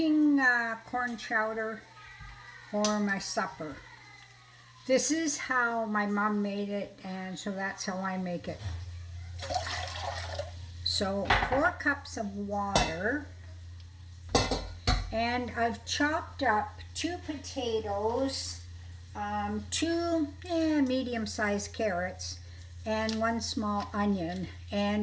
corn chowder for my supper. This is how my mom made it, and so that's how I make it. So 4 cups of water, and I've chopped up 2 potatoes, 2 medium-sized carrots, and 1 small onion.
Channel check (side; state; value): both; identical; correlation 1.00